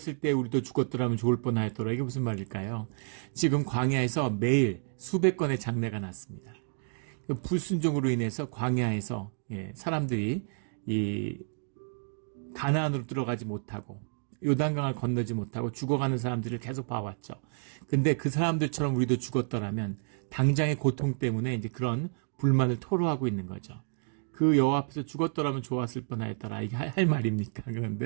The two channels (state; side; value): silent; left; 58 dB below the other